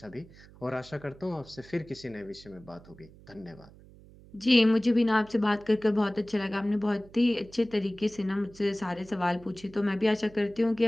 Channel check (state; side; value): noise; right; hum, 22 dB below the sound